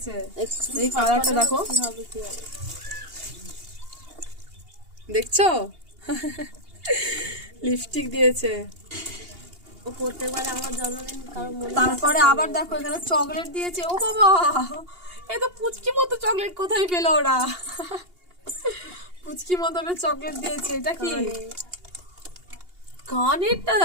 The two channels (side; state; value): left; late; 2.8 ms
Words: এই কালারটা দেখো, দেখছো লিপস্টিক দিয়েছে। ও প্রত্যেকবার আমার জন্মদিন কারো মনে। তারপরে আবার দেখো এখানে চকলেট দিয়েছে। ও বাবা, এই তো পুচকি মতো চকলেট কোথায় পেলো ওরা? পুচকি মতো চকলেট দিয়েছে। এটা কি কানেরটা